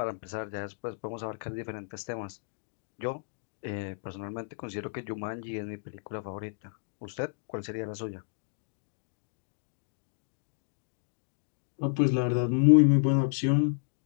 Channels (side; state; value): right; silent; digital silence